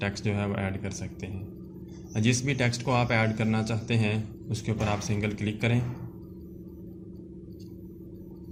टेक्स्ट जो है वो ऐड कर सकते हैं। जिस भी टेक्स्ट को आप ऐड करना चाहते हैं उसके ऊपर आप सिंगल क्लिक करें।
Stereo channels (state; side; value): identical; both; correlation 1.00